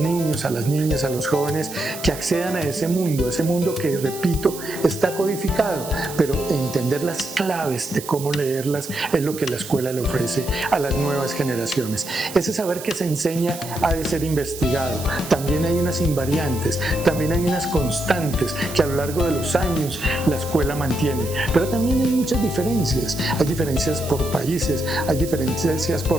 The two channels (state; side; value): noise; right; hiss, 12 dB below the sound